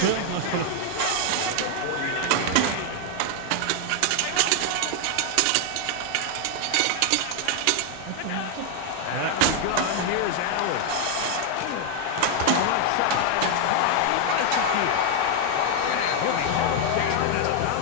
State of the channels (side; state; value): both; different; correlation 0.00